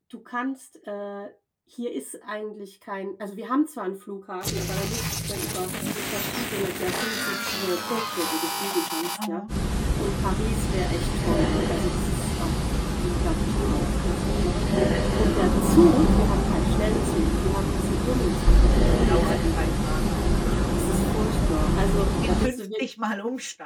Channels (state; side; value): identical; both; correlation 1.00